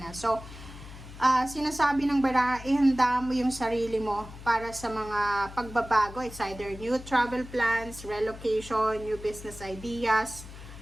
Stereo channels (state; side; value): noise; left; hum, 15 dB below the sound